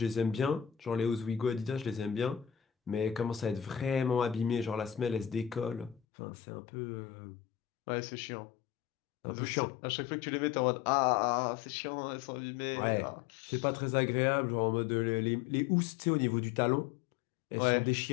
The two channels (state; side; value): drops out; right; at 6.0 s